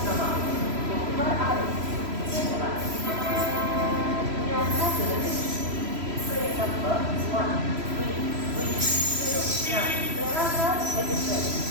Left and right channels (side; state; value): left; late; 3.0 ms